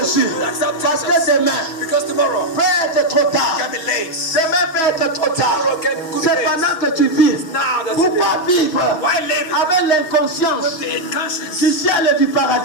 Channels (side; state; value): right; late; 6.5 ms